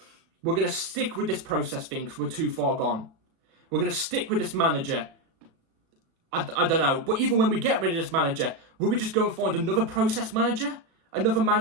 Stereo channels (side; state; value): left; late; 36 ms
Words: we're going to stick with this process thing because we're too far gone. We're going to stick with this manager. I don't know. But even when we get rid of this manager, will we just go and find another process manager? Another